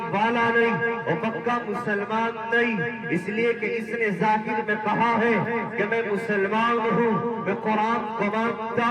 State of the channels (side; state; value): both; identical; correlation 1.00